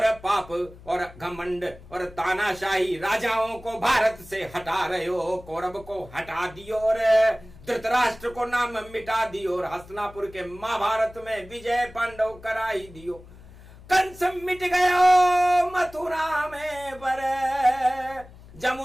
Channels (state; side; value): noise; left; hum, 20 dB below the sound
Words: पाप और घमंड और तानाशाही राजाओं को भारत से हटा रहे हो। कौरव को हटा दियो और धृतराष्ट्र को नाम मिटा दियो, और हस्तिनापुर के महाभारत में विजय पांडव कराई दियो। कंस मिट गयो मथुरा में, पर